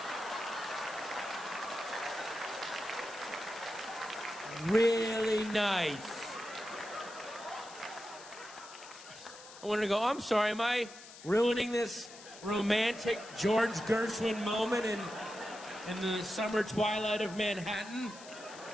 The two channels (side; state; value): left; noise; hiss, 17 dB below the sound